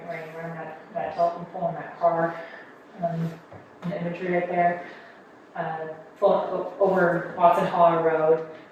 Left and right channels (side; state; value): both; identical; correlation 1.00